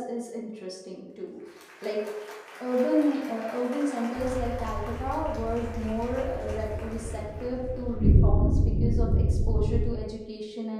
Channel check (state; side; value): identical; both; correlation 1.00